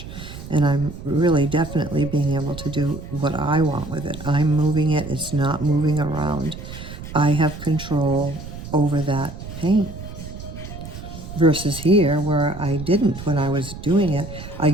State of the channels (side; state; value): right; noise; rumble, 11 dB below the sound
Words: and I'm really definitely being able to do what I want with it. I'm moving it, it's not moving around. I have control over that paint. Versus here, where I didn't when I was doing it. I